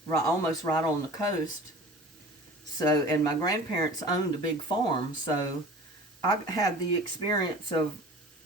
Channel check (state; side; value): normal; both; correlation 0.41